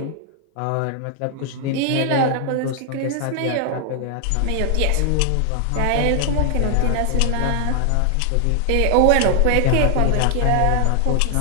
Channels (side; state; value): both; different; correlation 0.00